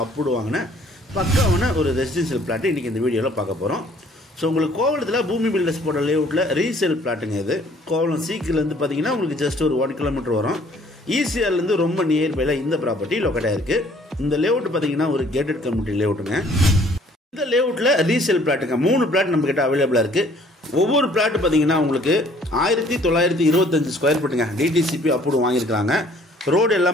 அப்ரூவ் வாங்கின பக்காவான ஒரு ரெசிடென்ஷியல் பிளாட்டு இன்றைக்கி இந்த வீடியோவில் பார்க்க போகிறோம். ஸோ உங்களுக்கு கோவளத்தில் பூமி பில்டர்ஸ் போட்ட லேஅவுட்டில் ரீசேல் பிளாட்டுங்க. இது கோவளம் சீக்கிலேருந்து பார்த்தீங்கன்னா உங்களுக்கு ஜஸ்ட் ஒரு 1 கிலோமீட்டர் வரும். ஈசிஆர்லேருந்து ரொம்ப நியர்பையில் இந்த ப்ராப்பர்ட்டி லொக்கேட் ஆகிருக்கு. இந்த லேஅவுட் பார்த்தீங்கன்னா ஒரு கேட்டட் கம்யூனிட்டி லேஅவுட்டுங்க. இந்த லேஅவுட்டில் ரீசேல் பிளாட்டுங்க 3 பிளாட் நம்மக்கிட்ட அவைலபிளாக இருக்குது. ஒவ்வொரு பிளாட்டு பார்த்தீங்கன்னா உங்களுக்கு 1925 ஸ்கொயர் ஃபீட்டுங்க டிடிசிபி அப்ரூவ் வாங்கியிருக்காங்க. ரோடு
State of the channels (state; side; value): normal; both; correlation 0.58